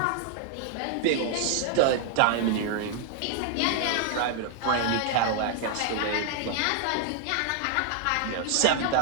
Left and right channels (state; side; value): different; both; correlation 0.00